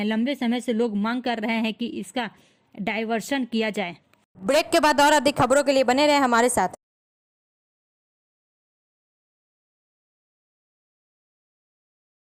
लंबे समय से लोग मांग कर रहे हैं कि इसका डायवर्शन किया जाए। ब्रेक के बाद और अधिक खबरों के लिए बने रहे हमारे साथ।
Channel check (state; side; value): identical; both; correlation 1.00